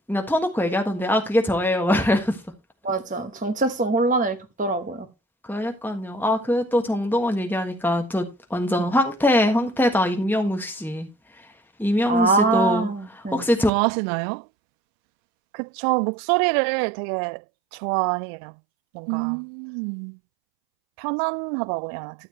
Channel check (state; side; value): drops out; left; at 13.7 s